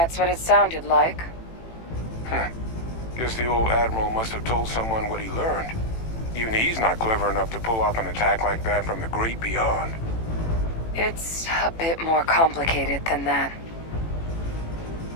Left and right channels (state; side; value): late; right; 18 ms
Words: what it sounded like. Guess the old Admiral must have told someone what he learned. Even he's not clever enough to pull off an attack like that from the great beyond. It's a bit more complicated than that.